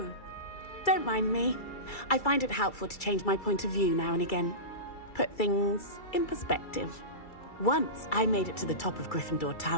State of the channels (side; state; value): right; late; 2.3 ms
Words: Don't mind me. I find it helpful to change my point of view now and again. Put things in perspective. Once I made it to the top of Gryffindor